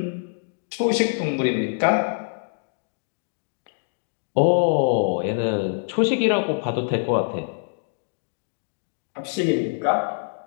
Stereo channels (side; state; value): right; silent; digital silence